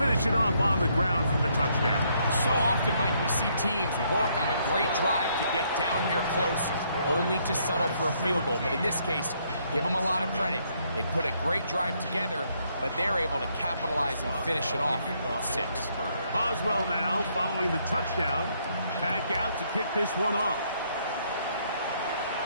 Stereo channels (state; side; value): inverted; both; correlation -0.71